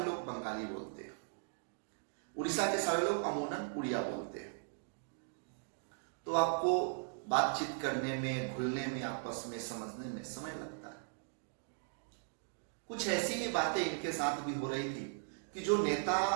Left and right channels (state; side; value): silent; left; digital silence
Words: लोग बंगाली बोलते हैं, उड़ीसा के सारे लोग अमूनन उड़िया बोलते हैं। तो आपको बातचीत करने में, घुलने में, आपस में समझने में समय लगता है। कुछ ऐसी ही बातें इनके साथ भी हो रही थी कि जो नेता